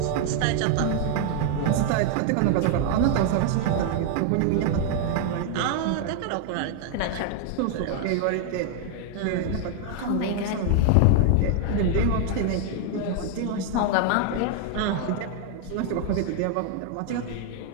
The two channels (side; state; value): both; different; correlation 0.00